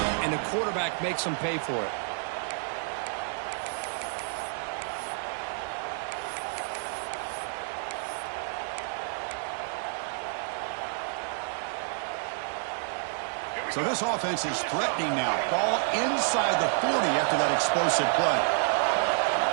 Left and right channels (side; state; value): left; silent; 58 dB below the other